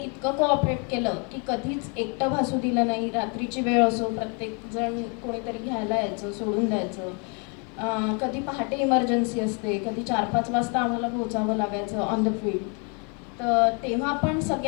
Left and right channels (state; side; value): quieter; right; 36.2 dB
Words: कोऑपरेट केलं की कधीच एकटं भासू दिलं नाही. रात्रीची वेळ असो, प्रत्येकजण कोणीतरी घ्यायला यायचं, सोडून द्यायचं. कधी पहाटे इमर्जन्सी असते, कधी 4-5 वाजता आम्हाला पोहोचावं लागायचं ऑन द फील्ड. तर तेव्हा पण